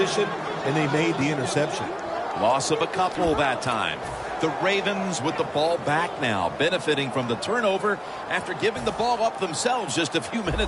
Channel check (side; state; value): both; identical; correlation 1.00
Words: and they made the interception. Loss of a couple that time. The Ravens with the ball back now, benefiting from the turnover after giving the ball up themselves just a few